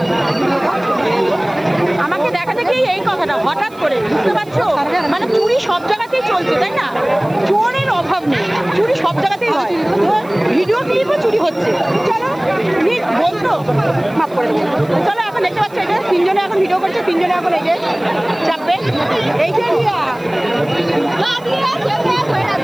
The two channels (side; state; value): right; noise; hiss, 28 dB below the sound